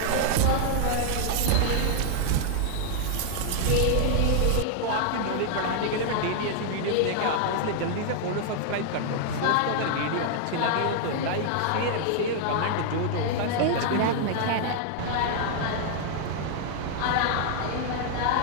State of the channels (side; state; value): both; different; correlation 0.00